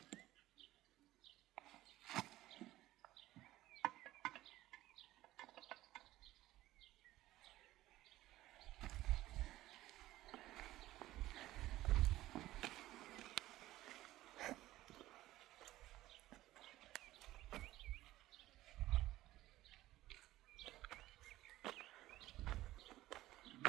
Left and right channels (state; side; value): quieter; left; 15.8 dB